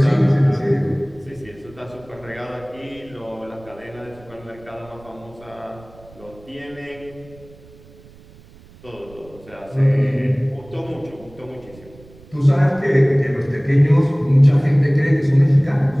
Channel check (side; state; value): right; noise; rumble, 23 dB below the sound